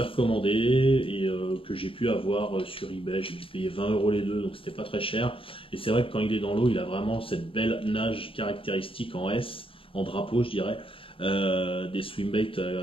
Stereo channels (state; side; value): late; right; 0.26 ms